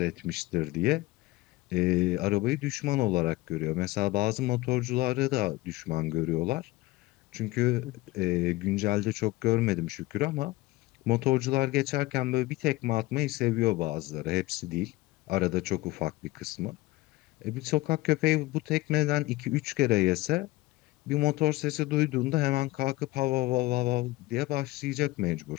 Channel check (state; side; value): quieter; right; 19.7 dB